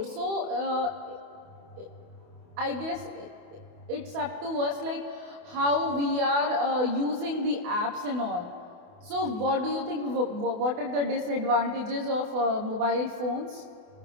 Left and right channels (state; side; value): late; left; 28 ms